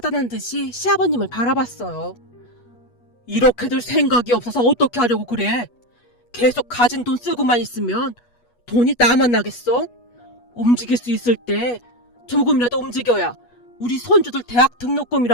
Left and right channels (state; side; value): late; right; 8.3 ms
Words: 듯이 시아버님을 바라봤어요. 이렇게들 생각이 없어서 어떻게 하려고 그래? 계속 가진 돈 쓰고만 있으면 돈이 나만 나겠어? 움직일 수 있을 때 조금이라도 움직여야 우리 손주들 대학